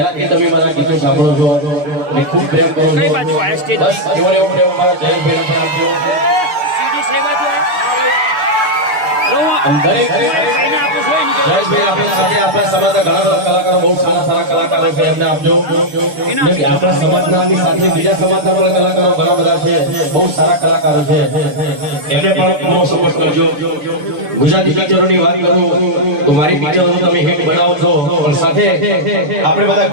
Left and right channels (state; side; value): late; left; 6.8 ms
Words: તમે મારા ગીતો સાંભળો છો અને ખૂબ પ્રેમ કરો છો. બસ એવો એવો પ્રેમ મારા જયેશભાઈને પણ આપજો. દરેક જયેશભાઈ આપણી સાથે આપણા સમાજના ઘણા બધા કલાકારો બહુ સારા કલાકારો છે, એમને આપજો. આપણા સમાજના સાથે બીજા સમાજના પણ કલાકારો ઘણા બધા છે, બહુ સારા કલાકારો છે, એમને પણ પૂરો સપોર્ટ કરજો. ગુજરાતી પિક્ચરોની વાત કરું તો મારી પિક્ચરો તમે હિટ બનાવો છો, પણ સાથે આપણે બધા